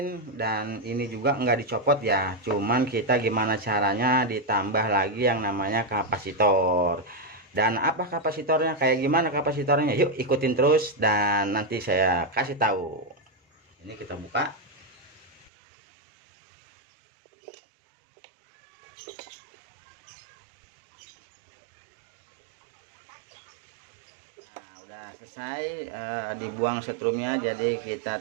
dan ini juga enggak dicopot ya, cuman kita gimana caranya ditambah lagi yang namanya kapasitor. Dan apa kapasitornya, kayak gimana kapasitornya, yuk ikutin terus dan nanti saya kasih tahu. Ini kita buka. Udah selesai dibuang setrumnya, jadi kita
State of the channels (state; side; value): drops out; left; at 15.5 s